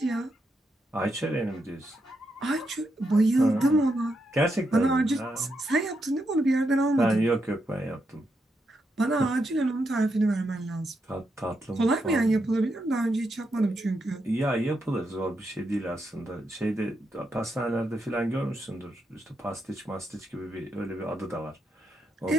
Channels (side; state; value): both; normal; correlation 0.82